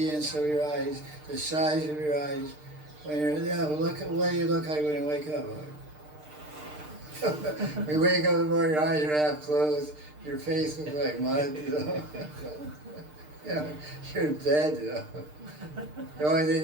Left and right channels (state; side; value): late; left; 6.6 ms